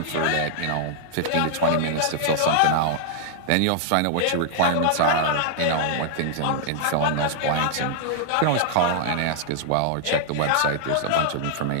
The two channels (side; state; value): both; different; correlation -0.01